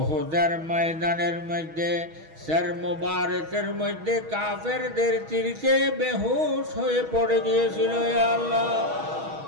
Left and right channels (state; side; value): late; left; 6.3 ms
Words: ময়দানের মধ্যে সর মুবারকের মধ্যে কাফেরদের তীরকে বেহুশ হয়ে পড়ে গিয়েছিল। ইয়া